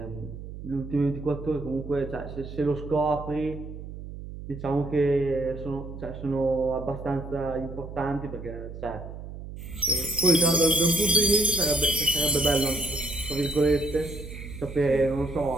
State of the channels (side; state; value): right; noise; hum, 11 dB below the sound